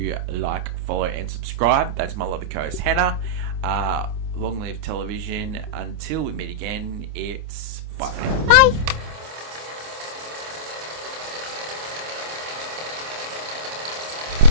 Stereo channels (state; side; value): late; left; 26 ms